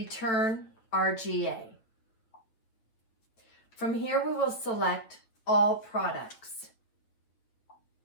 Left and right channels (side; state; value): right; late; 8.7 ms